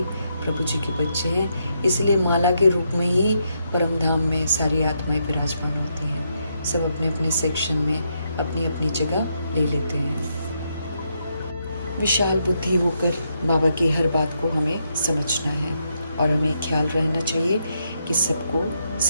प्रभु जी के बच्चे हैं। इसलिए माला के रूप में ही परम धाम में सारी आत्माएं विराजमान होती हैं। सब अपने अपने सेक्शन में अपनी अपनी जगह ले लेते हैं। विशाल बुद्धि होकर बाबा की हर बात को हमें समझना है और हमें ख्याल रहना चाहिए कि सबको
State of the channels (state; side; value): inverted; both; correlation -0.79